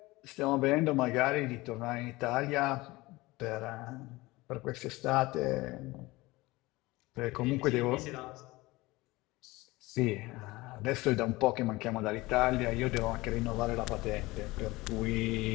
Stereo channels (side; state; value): right; quieter; 20.9 dB